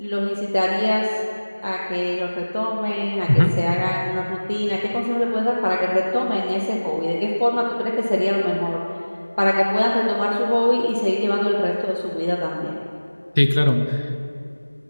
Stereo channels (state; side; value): inverted; both; correlation -1.00